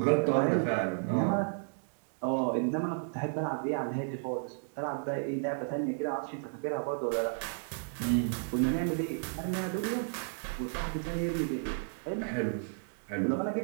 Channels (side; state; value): left; silent; digital silence